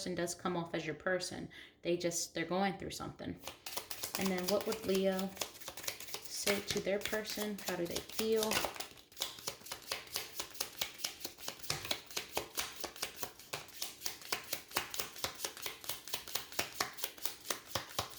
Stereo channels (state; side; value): identical; both; correlation 1.00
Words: does come off as your person. They're going through something. And then what would Leo say to their person? How do they feel?